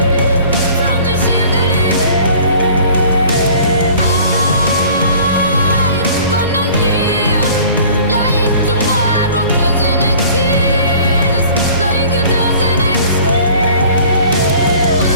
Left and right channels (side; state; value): both; inverted; correlation -0.49